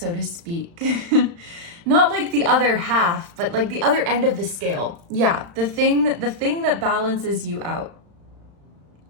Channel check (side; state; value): left; late; 35 ms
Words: to speak. Not like the other half, but like the other end of the scale. Yeah, the thing that balances you out.